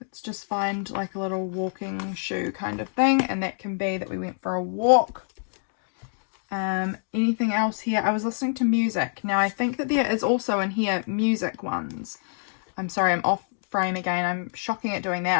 Let's just find like a little walking shoe kind of thing, and that can be that we went for a walk. Anything else here? I was listening to music. Now, I think that there is also in here music ones. I'm sorry, I'm off frame again. I'm shocking at doing that.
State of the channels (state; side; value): silent; right; digital silence